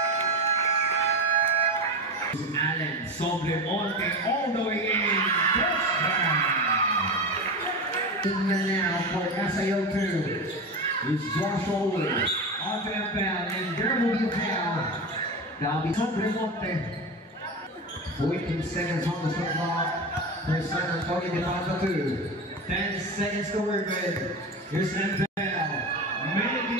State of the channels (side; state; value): both; normal; correlation 0.23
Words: Allen Sobremonte all the way in. Touchdown. Even now for SAO2. It's Josh Owen. Onto Empel, and there will be a foul. That'll be Remonte. 14 seconds on the shot clock for San Antonio de Papa 2. 10 seconds to work with. Here's Empel. Making